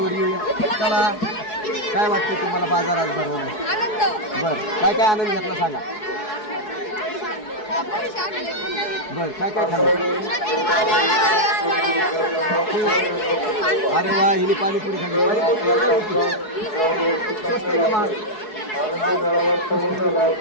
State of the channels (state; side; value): late; right; 4.7 ms